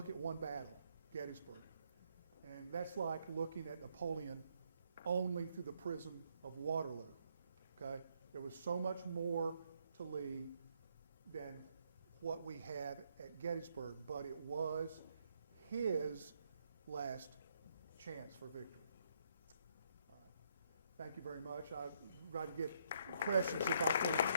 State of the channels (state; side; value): inverted; both; correlation -0.72